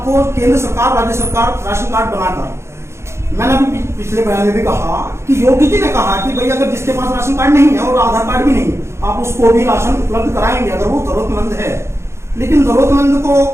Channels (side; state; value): left; late; 0.13 ms